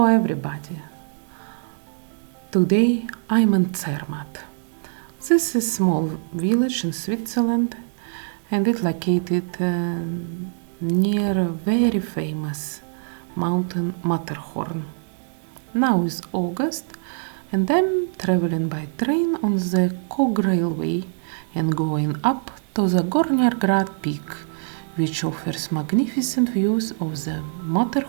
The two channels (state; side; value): silent; left; digital silence